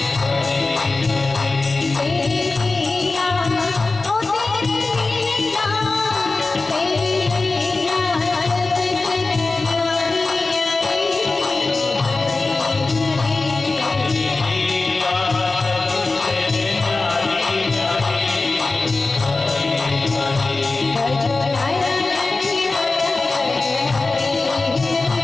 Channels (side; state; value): right; quieter; 3.5 dB